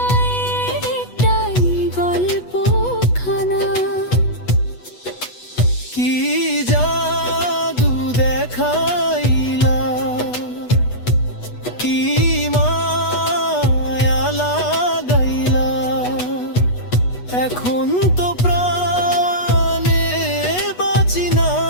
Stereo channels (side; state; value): right; late; 8.2 ms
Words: একটাই গল্পখানা। কি জাদু দেখাইলা, কি মায়া লাগাইলা, এখন তো প্রাণে বাঁচি না।